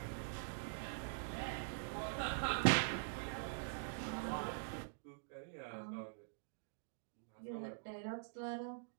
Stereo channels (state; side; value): silent; left; digital silence